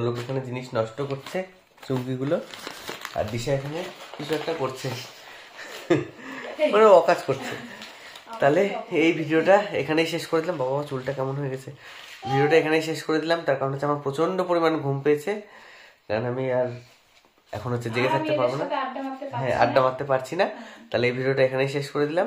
এখানে জিনিস নষ্ট করছে চুমকিগুলো, আর দিশা এখানে কিছু একটা করছে, মানে অকাজ করছে। তাহলে এই ভিডিওটা এখানেই শেষ করে দিলাম। বাবা চুলটা কেমন হয়ে গেছে। ভিডিওটা এখানেই শেষ করে দিলাম, তার কারণ হচ্ছে আমার প্রচন্ড পরিমাণ ঘুম পেয়েছে, কারণ আমি আর এখন হচ্ছে জেগে থাকতে পারবো না। হ্যাঁ, আড্ডা মারতে পারছি না। তাহলে এই ভিডিওটা এখানেই শেষ করে দিলাম।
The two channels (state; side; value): identical; both; correlation 1.00